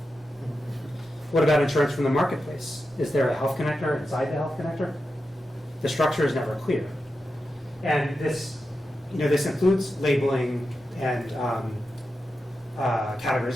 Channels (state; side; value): normal; both; correlation 0.90